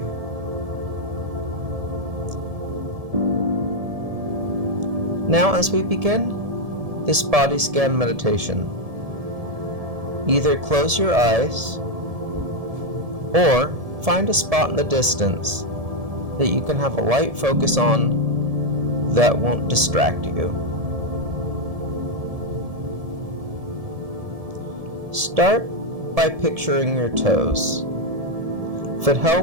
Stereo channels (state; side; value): late; left; 1.7 ms